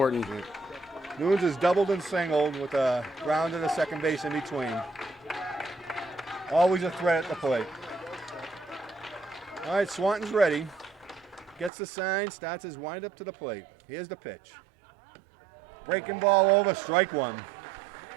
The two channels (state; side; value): drops out; left; at 11.7 s